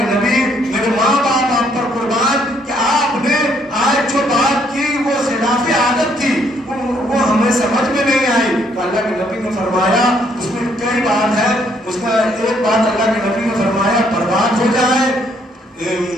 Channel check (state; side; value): normal; both; correlation 0.69